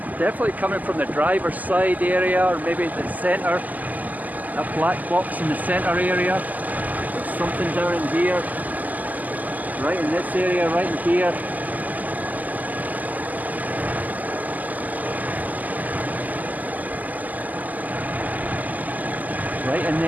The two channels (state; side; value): late; left; 0.080 ms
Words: Definitely coming from the driver's side area, or maybe the centre, that black box in the centre area. There's something down in here, right in this area, right in here. Right in